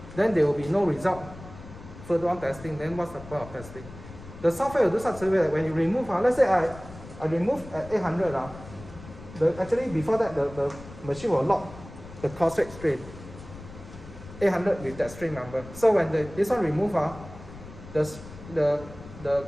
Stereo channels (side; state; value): left; noise; rumble, 16 dB below the sound